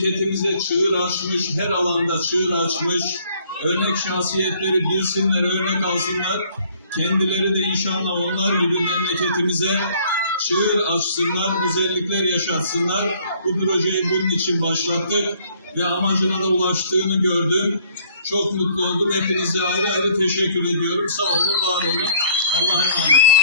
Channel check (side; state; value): both; inverted; correlation -0.59